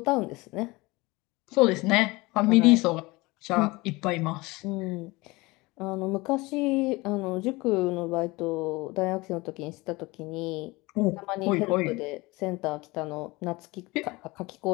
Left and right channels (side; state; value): right; quieter; 22.7 dB